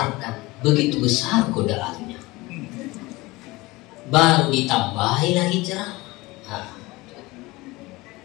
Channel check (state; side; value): quieter; right; 21.5 dB